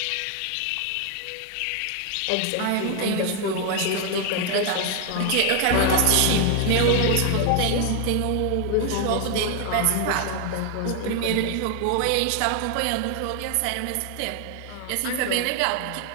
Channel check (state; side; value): different; both; correlation 0.00